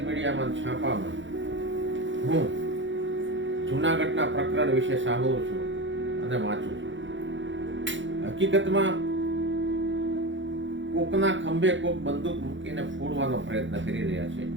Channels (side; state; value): left; late; 0.55 ms